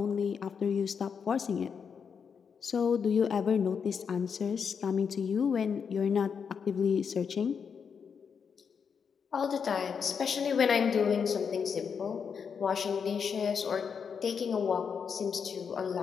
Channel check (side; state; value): right; quieter; 6.5 dB